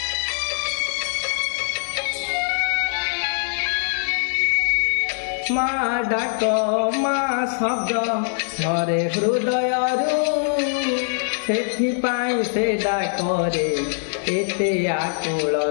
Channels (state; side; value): silent; right; 64 dB below the other